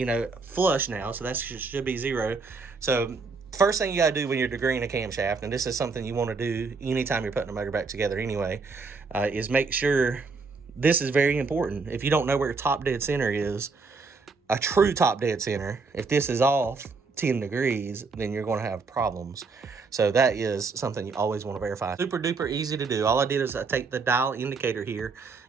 know, flush now, so that should be 0. So first thing you got to do when you're degreeing a camshaft, and this is something you want to do anytime you're putting a motor back together anyway, is make sure, this is very important. If you don't know where top dead center is, a true top dead center, if this is off 10 degrees, then you're going to have problems. So that is something you always want to verify. Super duper easy to do. All I did is I take the dial indicator here,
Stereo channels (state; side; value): quieter; left; 4.4 dB